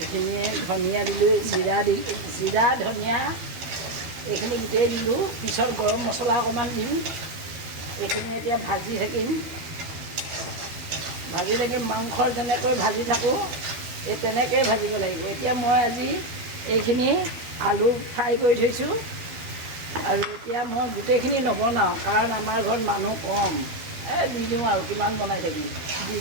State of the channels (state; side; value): late; left; 12 ms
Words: ধনিয়া দিলোঁ, জিৰা ধনিয়া এইখিনি গোটেই দিলোঁ। পিছত গৰম মছলা অকণমান দিম। এইখিনি এতিয়া ভাজি থাকিম। মাংসৰ যেনেকৈ ভাজি থাকোঁ, এই তেনেকৈয়ে ভাজিব লাগিব। এতিয়া মই আজি এইখিনি আলু ফ্ৰাই কৰি থৈছোঁ। আৰু এতিয়া মই গোটেইখিনি নবনাওঁ, কাৰণ আমাৰ ঘৰত মানুহ কম। দি দিওঁ আৰু কিমান বনাই থাকিম, দি